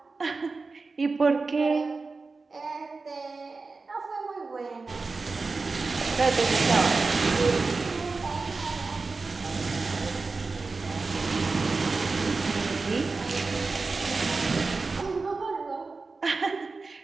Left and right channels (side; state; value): left; quieter; 4.0 dB